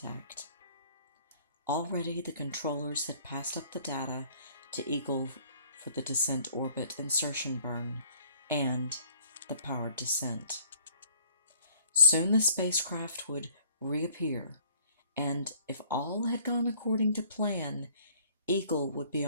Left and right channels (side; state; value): both; inverted; correlation -0.57